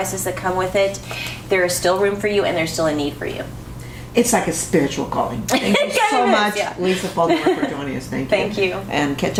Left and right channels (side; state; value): both; identical; correlation 1.00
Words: that come with it, there is still room for you and there's still a need for you. It's like a spiritual calling. Thank you so much, Lisa Falkenberg, for joining us. Thank you. Thank you. And catch